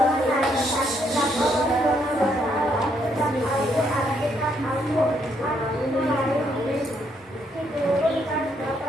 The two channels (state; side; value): normal; both; correlation 0.73